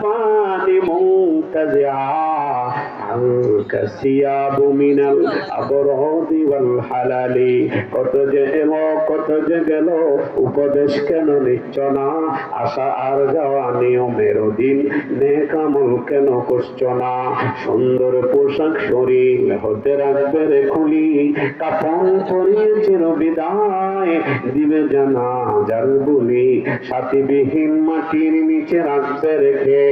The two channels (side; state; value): both; identical; correlation 1.00